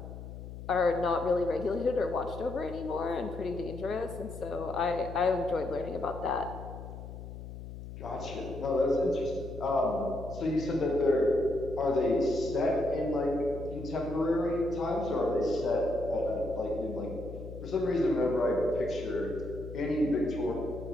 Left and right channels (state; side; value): noise; left; hum, 11 dB below the sound